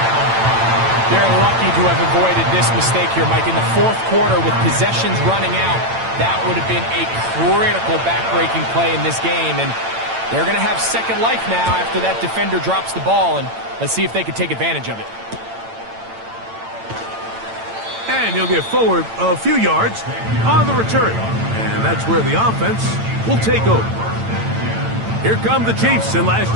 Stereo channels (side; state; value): left; late; 8.9 ms